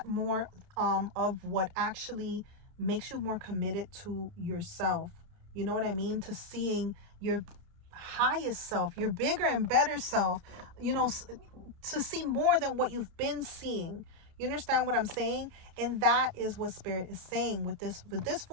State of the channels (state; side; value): late; left; 30 ms